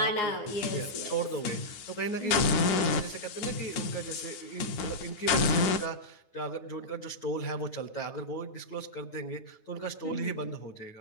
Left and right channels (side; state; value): right; late; 9.5 ms